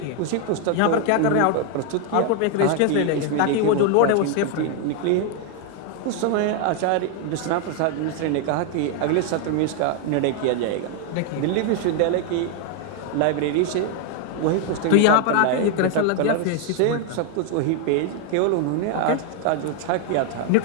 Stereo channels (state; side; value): different; both; correlation 0.00